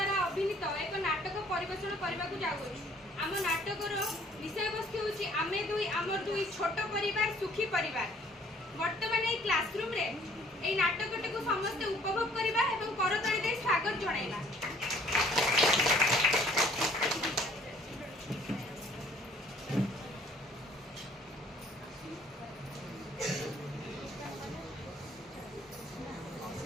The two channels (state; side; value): normal; both; correlation 0.58